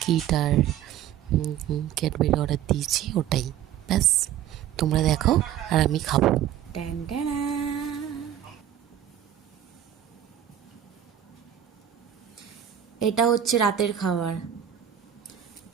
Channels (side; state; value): left; quieter; 10.6 dB